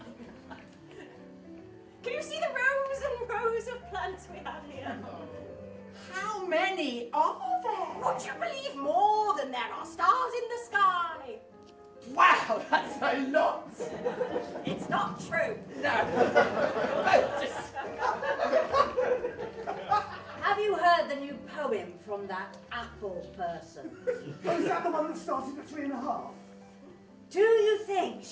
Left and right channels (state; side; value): identical; both; correlation 1.00